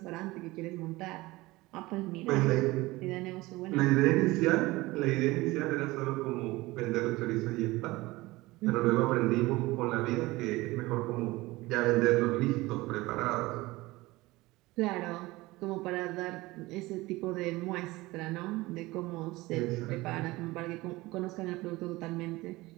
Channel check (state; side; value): quieter; left; 20.3 dB